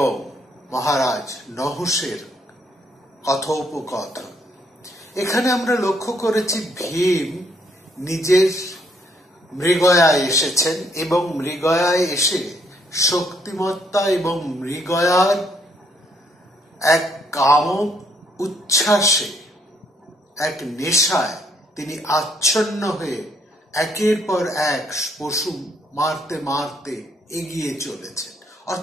মহারাজ নহুষের কথোপকথন। এখানে আমরা লক্ষ্য করেছি ভীম নিজের মৃগয়ায় এসেছেন এবং মৃগয়ায় এসে শক্তিমত্তা এবং মৃগয়ার এক কাম উচ্ছ্বাসে, এক নেশায় তিনি আচ্ছন্ন হয়ে একের পর এক পশু মারতে মারতে এগিয়ে চলেছেন।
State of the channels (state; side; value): normal; both; correlation 0.70